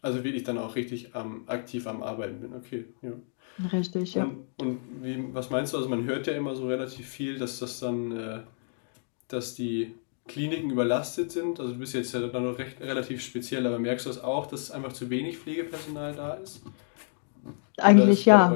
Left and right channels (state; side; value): silent; right; digital silence